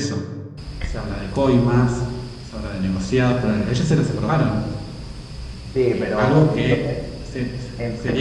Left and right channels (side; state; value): both; identical; correlation 1.00